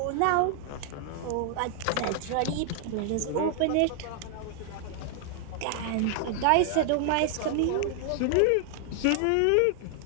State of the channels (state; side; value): different; both; correlation 0.00